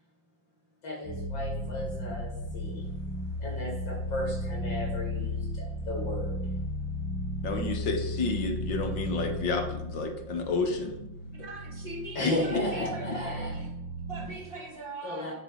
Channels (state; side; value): late; right; 5.7 ms